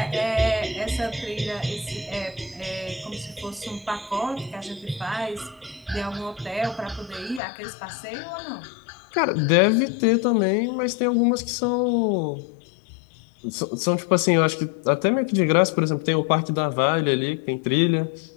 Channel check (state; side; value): drops out; right; at 7.4 s